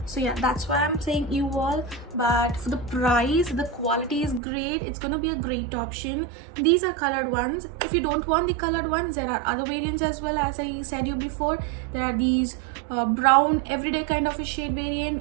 So yeah, that's why I'm saying you all. But for the price, the quality is great. It's gonna be a great option. These are colored ones. If you don't want the colored ones, there are other variants as well. As I said you before, there are these brown everyday kind of a shade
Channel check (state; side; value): drops out; left; at 4.4 s